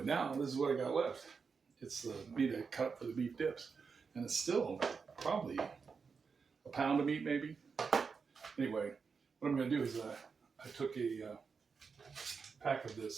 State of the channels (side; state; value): left; quieter; 5.4 dB